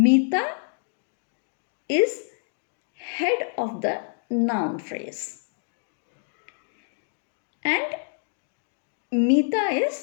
is head of the noun phrase. And Meeta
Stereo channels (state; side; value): silent; right; digital silence